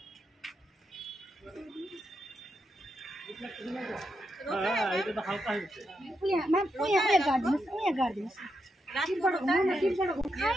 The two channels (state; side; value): normal; both; correlation 0.83